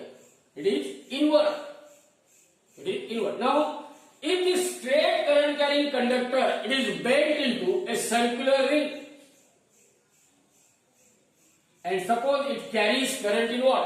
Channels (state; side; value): identical; both; correlation 1.00